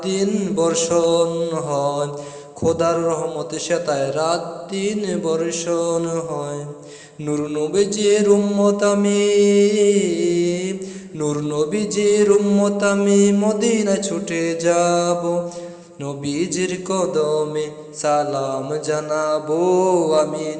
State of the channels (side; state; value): both; identical; correlation 1.00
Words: দিন বর্ষণ হয়, খোদার রহমতে সেতায় রাত দিন বর্ষণ হয়। নূর নবীজির উম্মত আমি, নূর নবীজির উম্মত আমি মদিনায় ছুটে যাব, নবীজির কদমে সালাম জানাবো, আমি